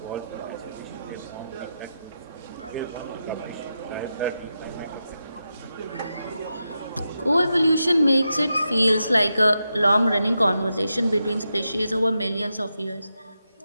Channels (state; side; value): inverted; both; correlation -0.88